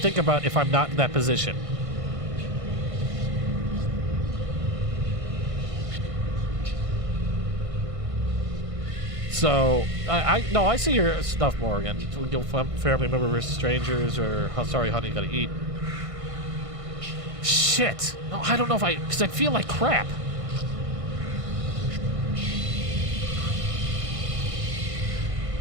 about if I'm not in that position. So I see your stuff, Morgan. Family member versus strangers, or sorry, honey, gotta eat. Shit. No, I don't know if because I feel like crap.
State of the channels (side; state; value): left; late; 1.6 ms